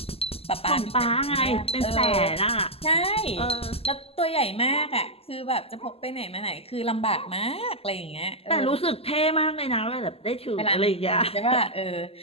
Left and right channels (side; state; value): right; late; 0.29 ms